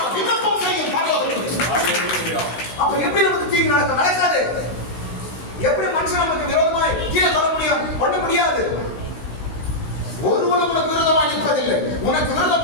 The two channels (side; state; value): right; late; 16 ms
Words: விண்ணப்பம் செய்யும் பரலோகத்தில். அப்ப எப்படி நமக்கு தீங்கு நடக்காது? எப்படி மனுஷன் நமக்கு விரோதமாய் கீழே தர முடியும்? பண்ண முடியாது. ஒருவனும் உனக்கு விரோதமாய் நிற்பதில்லை. உனக்கு